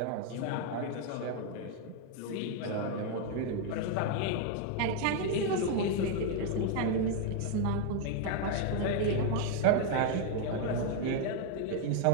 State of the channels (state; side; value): different; both; correlation 0.01